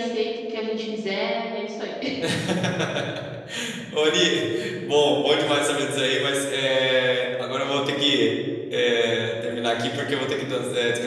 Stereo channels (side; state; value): both; identical; correlation 1.00